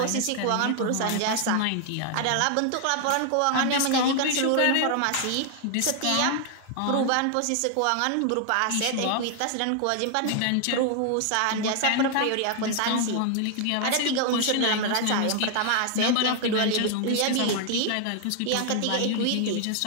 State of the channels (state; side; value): different; both; correlation 0.00